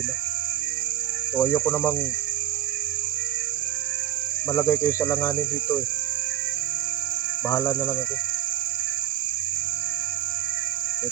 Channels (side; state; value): left; quieter; 12.0 dB